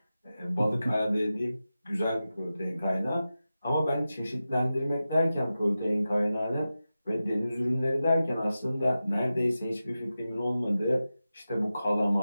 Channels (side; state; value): both; inverted; correlation -0.93